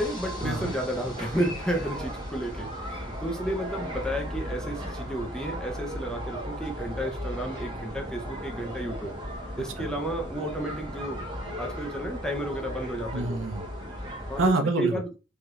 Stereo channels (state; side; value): normal; both; correlation 0.60